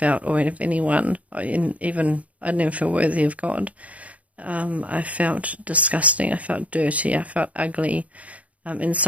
or of anyone. I didn't even feel worthy of God. I felt disgusting. I felt dirty. I felt ugly,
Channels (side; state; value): left; late; 0.068 ms